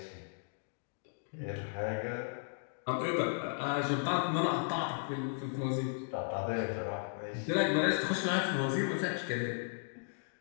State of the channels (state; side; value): silent; right; digital silence